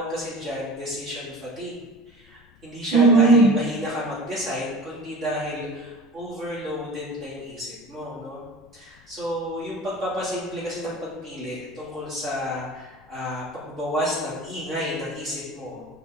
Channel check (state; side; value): noise; left; rumble, 28 dB below the sound